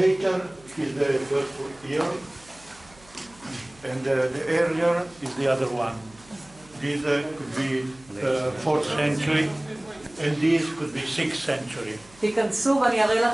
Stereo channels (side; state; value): right; noise; hum, 26 dB below the sound